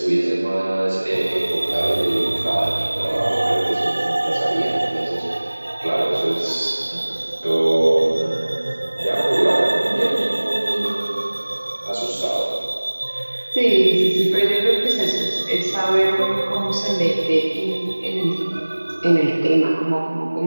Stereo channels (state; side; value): inverted; both; correlation -1.00